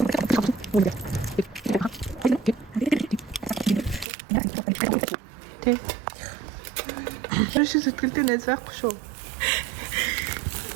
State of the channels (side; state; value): left; drops out; at 4.0 s